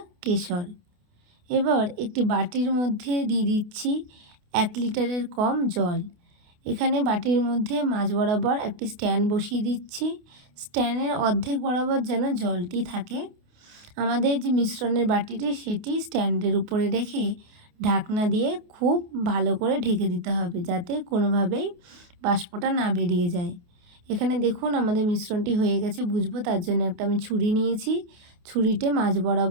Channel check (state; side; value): late; left; 28 ms